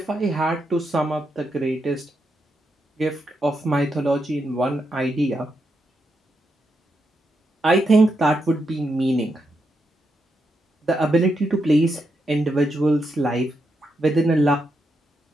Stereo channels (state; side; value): normal; both; correlation 0.83